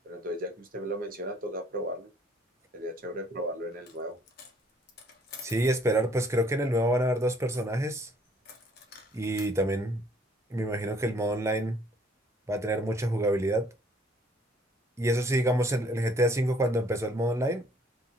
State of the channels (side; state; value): both; normal; correlation 0.61